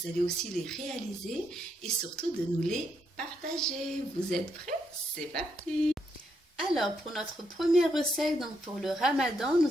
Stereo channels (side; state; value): both; normal; correlation 0.78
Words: allez aussi les réaliser et surtout de nous les partager. Vous êtes prêts? C'est parti! Alors, pour notre première recette, pour le Ramadan,